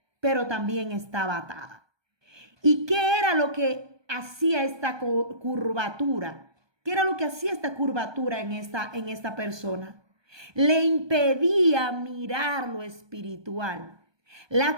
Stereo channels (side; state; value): left; late; 1.2 ms